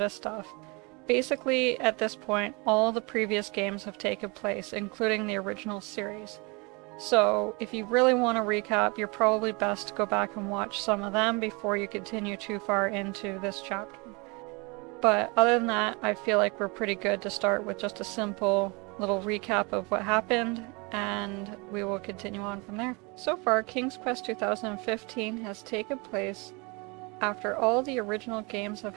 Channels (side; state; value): left; quieter; 28.8 dB